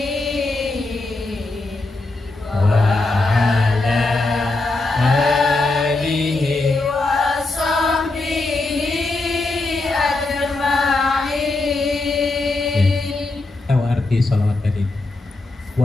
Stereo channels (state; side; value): quieter; right; 3.2 dB